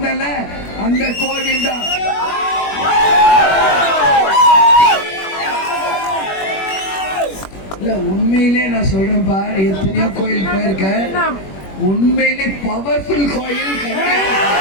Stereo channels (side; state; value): right; late; 21 ms